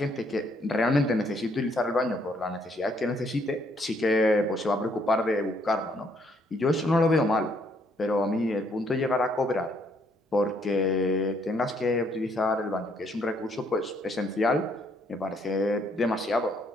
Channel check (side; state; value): both; normal; correlation 0.69